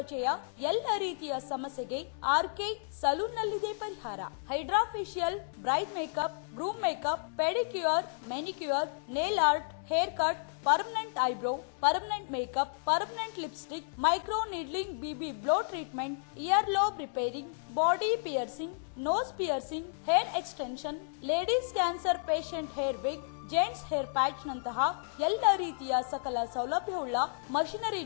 ಎಲ್ಲ ರೀತಿಯ ಸಮಸ್ಯೆಗೆ ಆರ್ಕೆ ಸಲೂನ್ ನಲ್ಲಿದೆ ಪರಿಹಾರ. Hydra facial, bride makeup, groom makeup, pedicure, manicure, nail art, hair cut, permanent eyebrow, permanent makeup, permanent lipstick, micro needling, BB glow treatment, ear lobe repairing, body piercing, nose piercing, hair extension, ladies cancer patient hair wig, gents hair patch ನಂತಹ ಎಲ್ಲ ರೀತಿಯ ಸಕಲ ಸೌಲಭ್ಯವುಳ್ಳ machinery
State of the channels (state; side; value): silent; right; 56 dB below the other